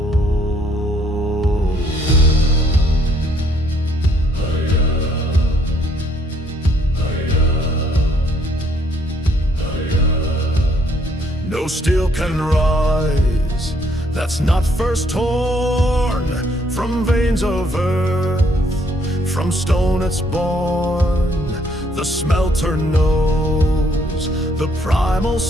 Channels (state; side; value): normal; both; correlation 0.67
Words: No steel can rise that's not first torn from veins of earth. From stone it's born. The smelter knows the primal